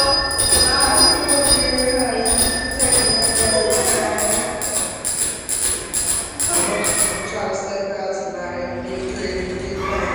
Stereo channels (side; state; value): both; identical; correlation 1.00